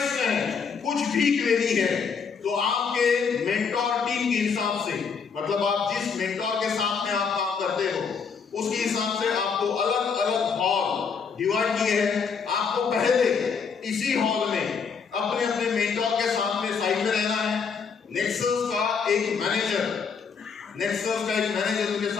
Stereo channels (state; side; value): quieter; right; 5.9 dB